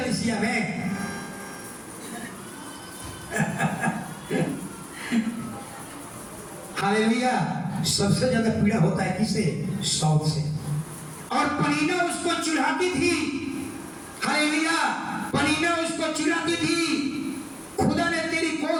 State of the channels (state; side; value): identical; both; correlation 1.00